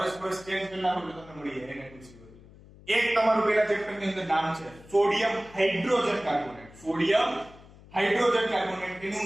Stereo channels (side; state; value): left; noise; hum, 22 dB below the sound